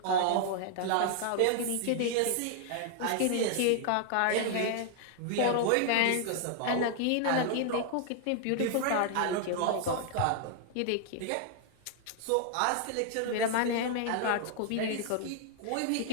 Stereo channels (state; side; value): different; both; correlation 0.00